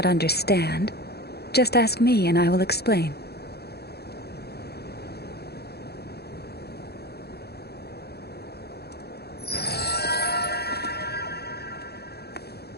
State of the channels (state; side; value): late; right; 0.47 ms